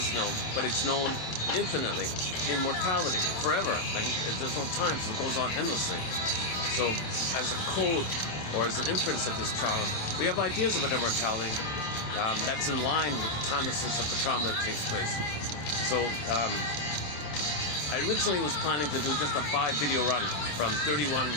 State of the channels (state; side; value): late; right; 26 ms